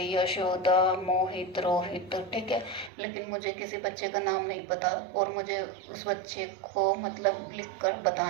यशोदा, मोहित, रोहित। ठीक है। लेकिन मुझे किसी बच्चे का नाम नहीं पता और मुझे उस बच्चे को मतलब लिख कर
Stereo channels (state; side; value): drops out; left; at 2.9 s